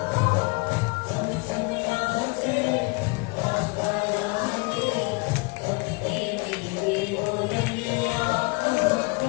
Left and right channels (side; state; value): right; quieter; 28.5 dB